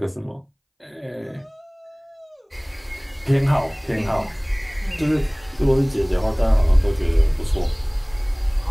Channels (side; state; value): both; identical; correlation 1.00